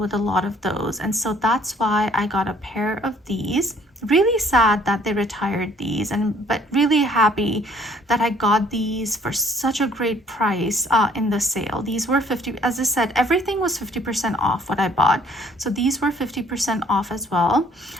a lot of those, and so that's why I got a pair of these. Really sad that they retired these, but really happy that I got these for such a great price in the sale. These were 50, as I said, everything was 50% off what I bought, so these were 50% off as well.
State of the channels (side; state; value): both; normal; correlation 0.59